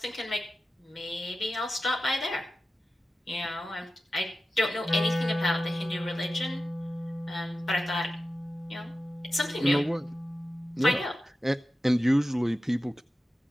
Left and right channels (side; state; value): both; normal; correlation 0.93